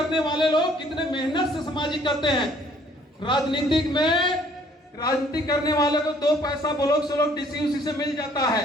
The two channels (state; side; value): normal; both; correlation 0.60